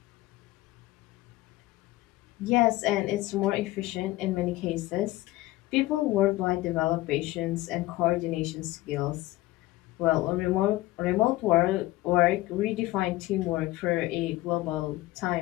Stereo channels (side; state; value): right; quieter; 18.1 dB